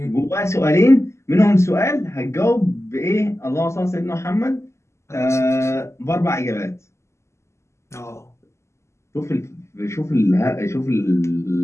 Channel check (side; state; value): right; late; 0.13 ms